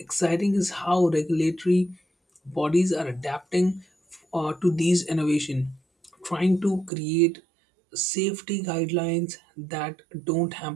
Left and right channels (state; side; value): drops out; left; at 6.9 s